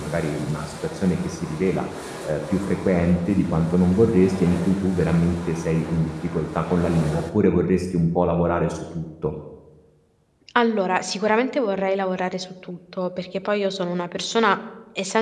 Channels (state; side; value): identical; both; correlation 1.00